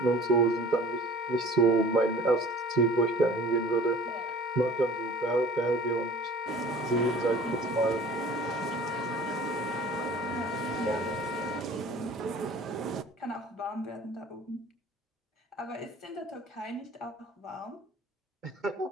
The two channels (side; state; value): both; normal; correlation 0.46